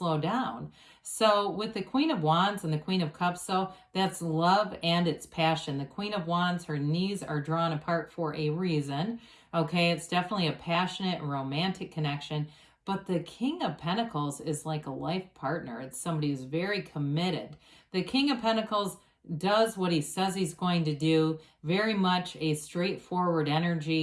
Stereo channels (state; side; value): identical; both; correlation 1.00